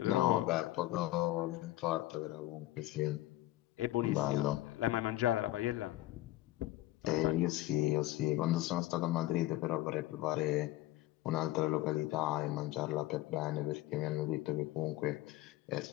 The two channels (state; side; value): quieter; right; 16.3 dB